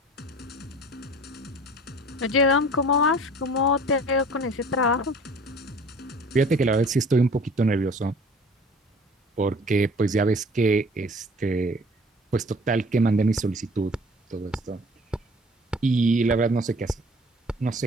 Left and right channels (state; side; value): normal; both; correlation 0.47